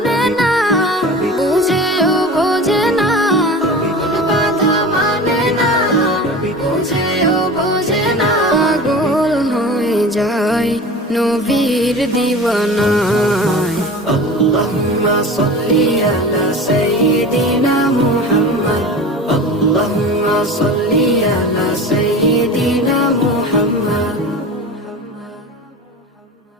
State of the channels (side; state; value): both; normal; correlation 0.35